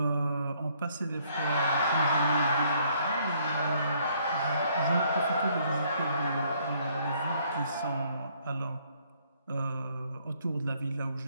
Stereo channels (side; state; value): both; inverted; correlation -0.66